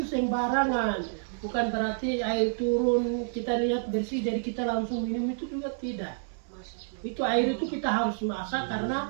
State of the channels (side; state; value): left; silent; digital silence